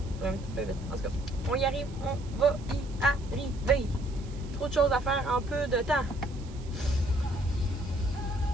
Un petit peu vite. En tout cas, on y arrive. On va y arriver. Trop de choses à faire en peu de temps.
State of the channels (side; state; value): right; noise; hiss, 23 dB below the sound